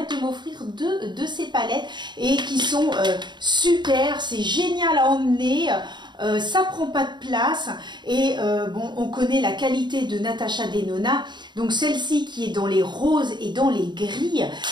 m'offrir 2 de ces palettes et qui sont super. C'est génial à emmener. Ça prend pas de place et on connaît la qualité de Natasha Denona, donc celle-ci qui est dans les roses et dans les gris,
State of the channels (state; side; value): late; left; 0.22 ms